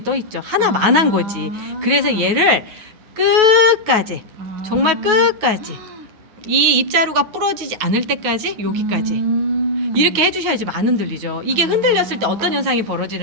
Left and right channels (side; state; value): left; late; 9.4 ms